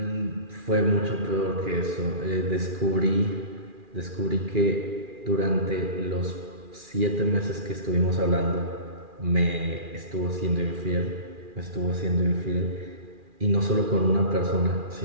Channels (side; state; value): left; late; 2.4 ms